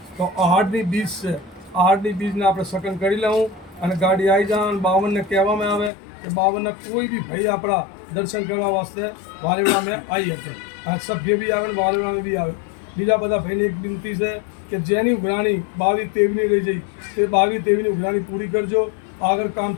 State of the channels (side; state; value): right; drops out; at 5.9 s